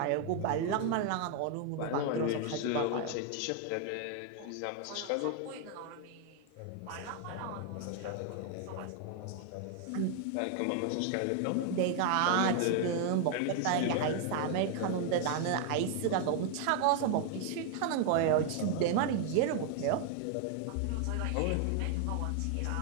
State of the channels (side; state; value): both; different; correlation 0.00